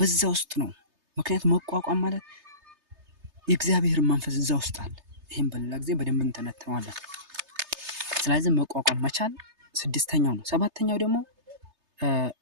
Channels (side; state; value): left; late; 3.3 ms